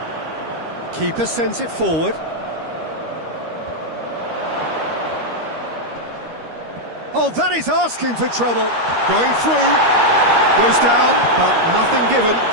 Keeper sends it forward. Oh, that is asking for trouble. Going through. Goes down, but nothing given.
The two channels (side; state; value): left; late; 13 ms